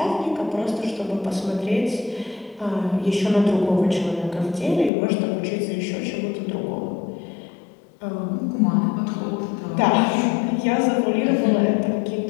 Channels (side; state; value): right; drops out; at 4.9 s